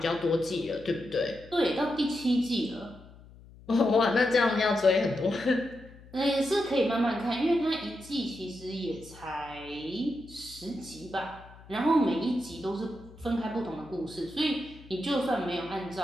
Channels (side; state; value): left; noise; hum, 21 dB below the sound